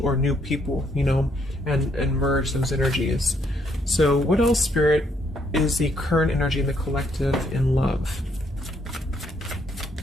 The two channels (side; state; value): both; normal; correlation 0.71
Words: or new people, and merge those energies. So what else, Spirit, is the current energy in the collective in love?